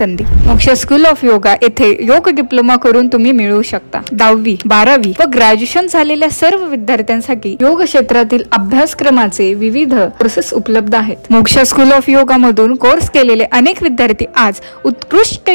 मोक्ष स्कूल ऑफ योगा येथे योग डिप्लोमा करून तुम्ही मिळवू शकता। 10वी, 12वी व ग्रॅज्युएशन झालेल्या सर्व विद्यार्थ्यांसाठी योग क्षेत्रातील अभ्यासक्रमाचे विविध कोर्सेस उपलब्ध आहेत। मोक्ष स्कूल ऑफ योगा मधून कोर्स केलेले अनेक विद्यार्थी आज उत्कृष्ट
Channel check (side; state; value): both; inverted; correlation -1.00